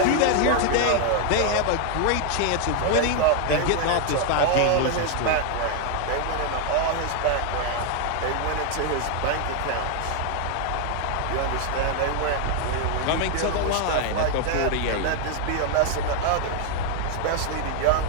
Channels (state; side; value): different; both; correlation 0.01